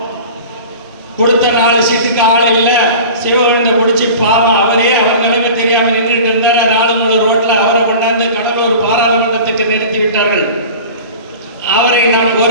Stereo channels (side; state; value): both; inverted; correlation -0.38